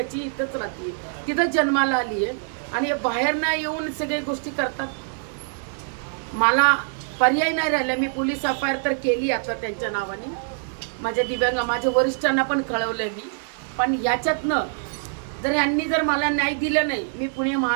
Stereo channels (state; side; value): silent; left; 62 dB below the other